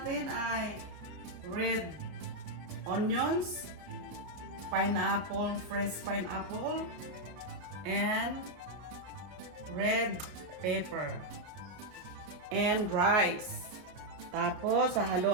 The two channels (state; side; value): late; left; 33 ms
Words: ay red onions, pineapple, fresh pineapple, and red pepper, and rice. Tapos,